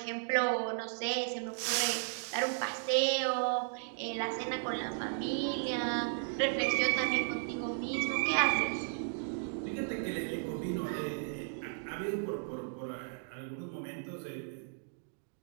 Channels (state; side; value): silent; left; digital silence